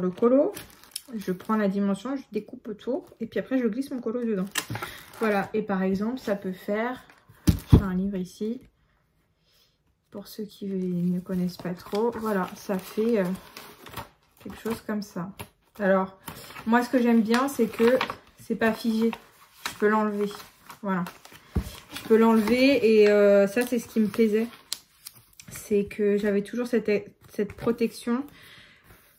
colo. Je prends la dimension, je découpe autour. Et puis après, je glisse mon colo dedans. Voilà. Et par exemple, ça peut faire... J'ai un livre ici. Pour ceux qui ne connaissent pas trop. Voilà, ça fait quelque chose comme ça. Alors, moi, ce que j'aime bien, c'est que c'est pas figé. Je peux l'enlever. Voilà. Je peux l'enlever et ça, c'est ce qui me plaisait. C'est que j'avais toujours cette protection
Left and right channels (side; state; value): both; identical; correlation 1.00